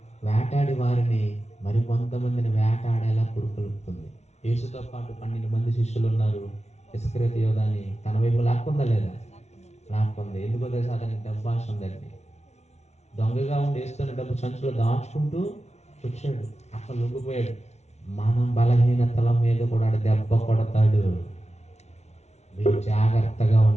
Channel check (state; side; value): late; right; 0.32 ms